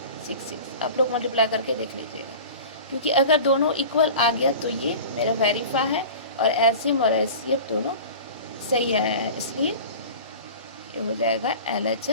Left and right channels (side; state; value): both; inverted; correlation -0.37